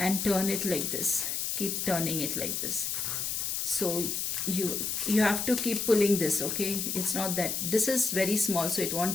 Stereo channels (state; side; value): noise; left; hiss, 1 dB below the sound